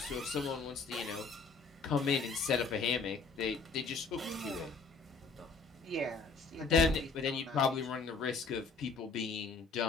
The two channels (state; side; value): quieter; right; 4.4 dB